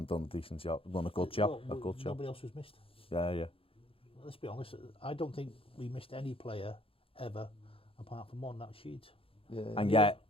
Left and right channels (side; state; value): right; late; 0.27 ms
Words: done a decent job, done a good job. Nobody else was missed. Yeah. Let's be honest, I don't think we missed any player ever apart from one, that was Sheeds. Yeah. And yet,